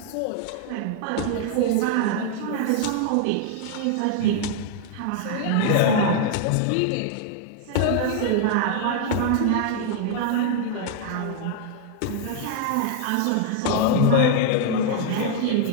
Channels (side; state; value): both; different; correlation 0.00